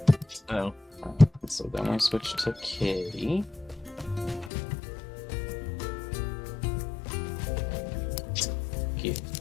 Oh. So then we switch to Kitty. Give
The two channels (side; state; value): right; drops out; at 4.5 s